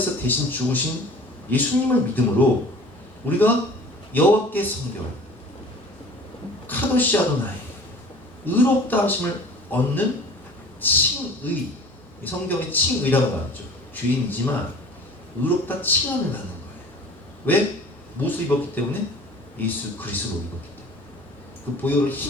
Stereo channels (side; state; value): both; normal; correlation 0.45